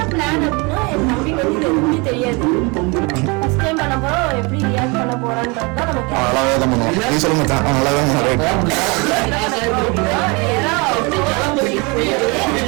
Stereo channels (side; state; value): left; quieter; 28.4 dB